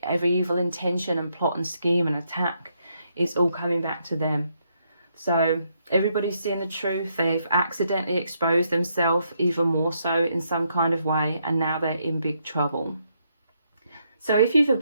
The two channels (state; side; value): inverted; both; correlation -0.77